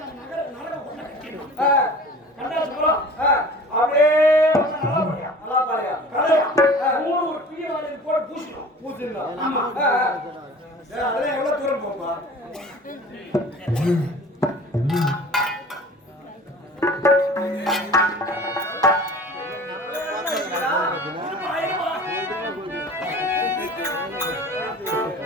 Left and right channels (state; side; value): normal; both; correlation 0.42